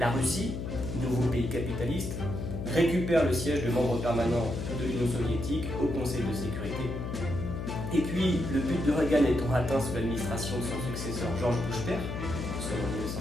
Russie, nouveau pays capitaliste, récupère le siège de membre permanent de l'Union soviétique au Conseil de sécurité. Et puis, le but de Reagan étant atteint sous l'administration de son successeur George Bush père, en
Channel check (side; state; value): left; noise; hum, 4 dB below the sound